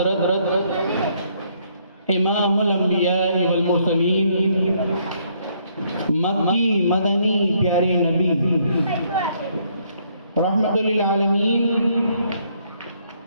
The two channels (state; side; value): inverted; both; correlation -0.69